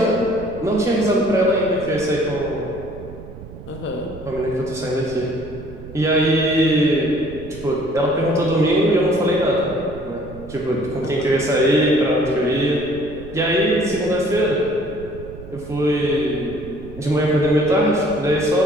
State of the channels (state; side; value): noise; right; rumble, 15 dB below the sound